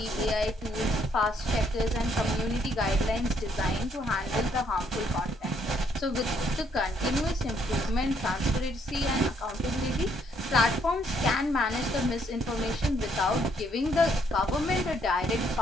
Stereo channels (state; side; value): normal; both; correlation 0.69